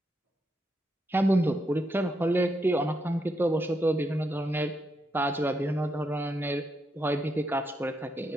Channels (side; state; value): both; normal; correlation 0.81